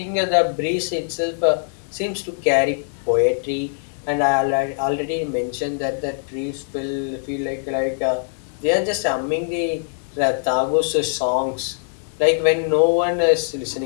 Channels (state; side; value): silent; right; 64 dB below the other